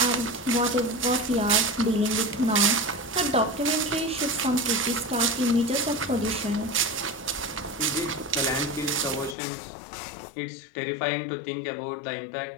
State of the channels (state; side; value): drops out; right; at 9.3 s